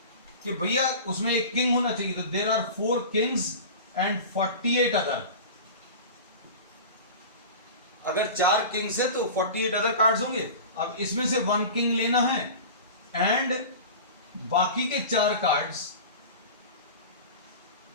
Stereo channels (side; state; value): both; inverted; correlation -0.34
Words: कि भैया उसमें एक किंग होना चाहिए, तो there are 4 kings and 48 other. अगर 4 किंग्स है तो 48 अदर कार्ड्स होंगे। अब इसमें से 1 किंग लेना है एंड बाकी के 4 कार्ड्स